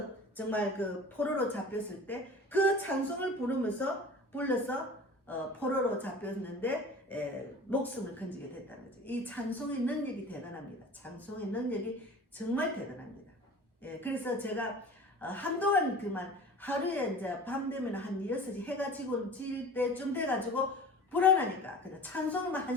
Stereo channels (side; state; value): both; normal; correlation 0.40